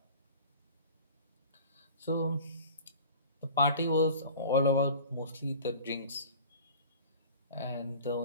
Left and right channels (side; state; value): both; inverted; correlation -0.41